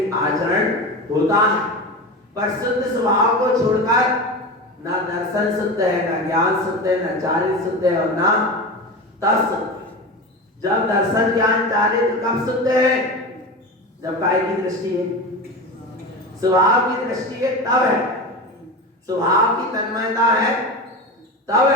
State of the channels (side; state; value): both; normal; correlation 0.25